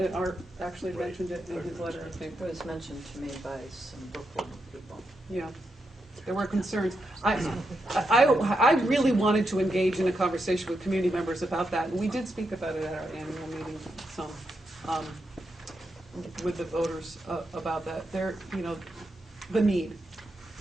Art actually mentioned it in his letter, I think. It was mentioned to me by some Brooklyn people. Yeah, there were concerns. I really wanted to engage in a conversation with community members about that, and we did speak about it at our annual meeting, some, with the voters about that. There, you know, the need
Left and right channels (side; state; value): both; normal; correlation 0.84